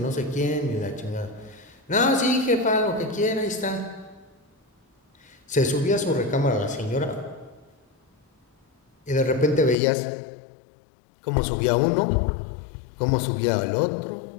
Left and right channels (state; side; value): drops out; right; at 9.8 s